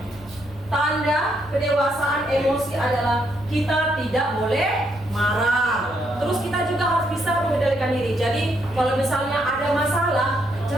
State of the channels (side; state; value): left; noise; hum, 22 dB below the sound